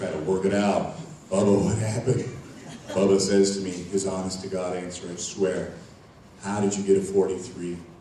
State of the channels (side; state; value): both; identical; correlation 1.00